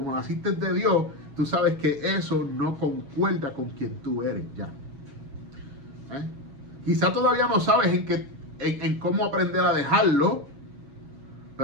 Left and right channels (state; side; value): late; left; 7.2 ms